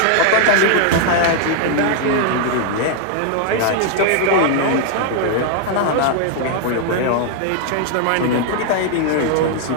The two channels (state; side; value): different; both; correlation 0.00